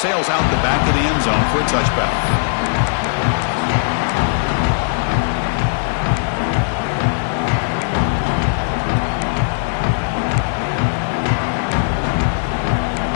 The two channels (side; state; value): right; silent; digital silence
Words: out the back of the end zone for a touchback.